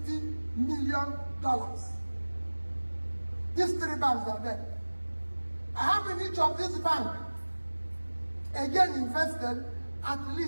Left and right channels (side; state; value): both; inverted; correlation -1.00